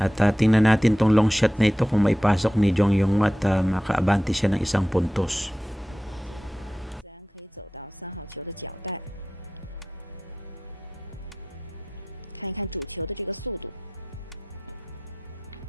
At tingnan natin tong long shot na ito kung maipasok ni Jiang Yanghua at makaabante siya ng 1 puntos. 自然可以走到3号球的脚带，看一看主球的这个速度。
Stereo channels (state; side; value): normal; both; correlation 0.92